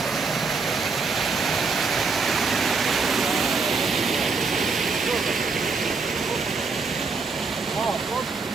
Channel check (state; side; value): quieter; left; 4.5 dB